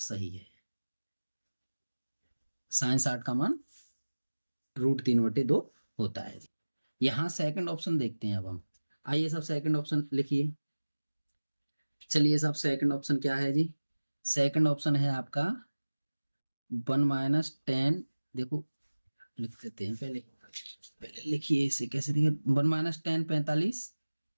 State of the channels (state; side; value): inverted; both; correlation -1.00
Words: है, sin 60 का मान √3/2 होता है। यहां सेकंड ऑप्शन देखते हैं अब हम, आइए साहब सेकंड ऑप्शन लिखिए। चलिए साहब सेकंड ऑप्शन क्या है जी, सेकंड ऑप्शन है आपका 1 - 10, देखो लिख देते हैं, पहले लिखिए इसे कैसे दिखे, 1 - 10 45,